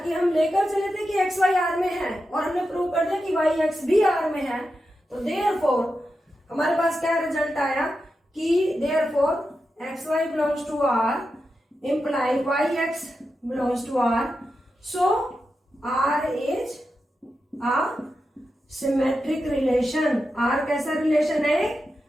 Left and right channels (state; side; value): normal; both; correlation 0.89